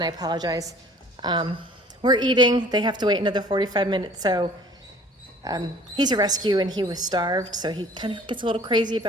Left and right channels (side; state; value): both; normal; correlation 0.50